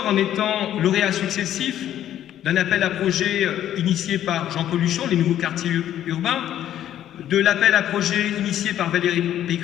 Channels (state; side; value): quieter; right; 11.4 dB